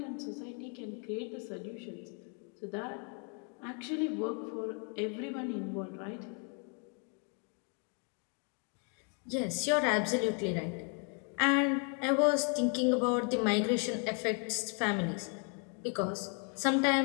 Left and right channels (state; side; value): quieter; right; 39.8 dB